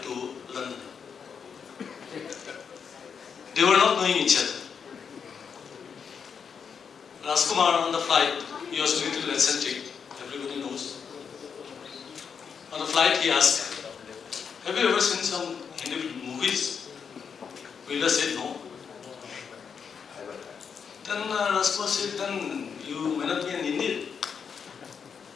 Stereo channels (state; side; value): quieter; right; 6.6 dB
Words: to London. They were not knowing each other. Rajkumar on the flight, he was a little eccentric, everybody knows. On the flight he asked, have you ever seen some Hindi movies? Birla said no. Then Rajkumar said, then you may not be an Indian.